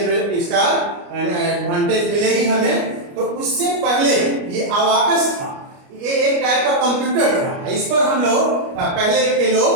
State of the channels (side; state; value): left; late; 29 ms